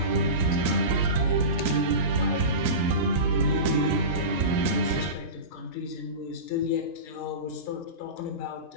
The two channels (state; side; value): late; right; 2.7 ms